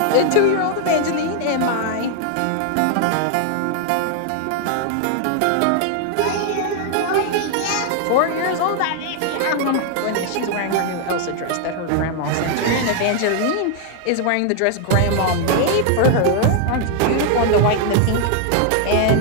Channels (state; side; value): different; both; correlation 0.00